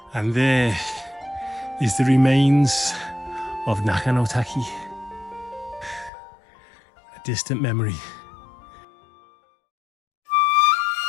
And there is the remains of Naka, a distant memory.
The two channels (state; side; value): drops out; right; at 6.1 s